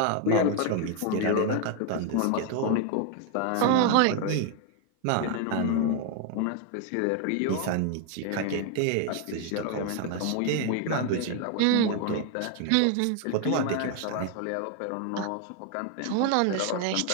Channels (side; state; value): both; different; correlation 0.01